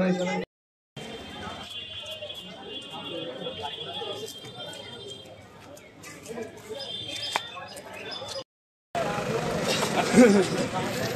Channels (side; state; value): both; identical; correlation 1.00